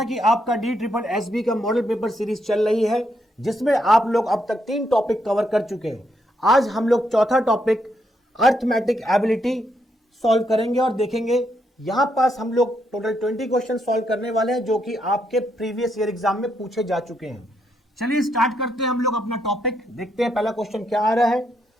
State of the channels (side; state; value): both; normal; correlation 0.77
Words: कि आपका DSSB का मॉडल पेपर सीरीज चल रही है जिसमें आप लोग अब तक 3 टॉपिक कवर कर चुके हैं। आज हम लोग चौथा टॉपिक अर्थमेटिक एबिलिटी सॉल्व करेंगे और देखेंगे। यहां पास हम लोग टोटल 20 क्वेश्चन सॉल्व करने वाले हैं जो कि आपके प्रीवियस ईयर एग्जाम में पूछे जा चुके हैं। चलिए स्टार्ट करते हैं हम लोग अपना टॉपिक। देखते हैं पहला क्वेश्चन क्या आ रहा है।